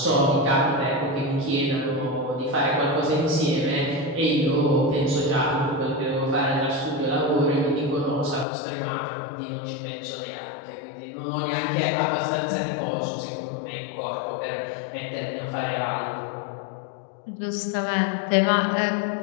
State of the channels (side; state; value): right; drops out; at 8.5 s